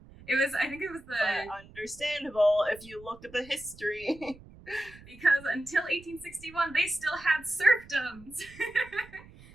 I think it was the... But understandable if you look at the history. Because until 1861, they still had serfdoms.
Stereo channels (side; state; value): right; noise; rumble, 21 dB below the sound